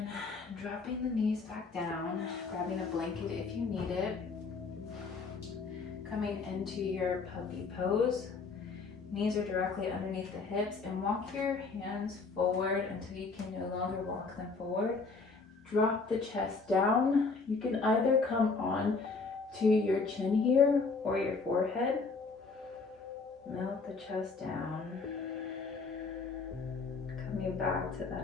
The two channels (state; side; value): quieter; right; 4.3 dB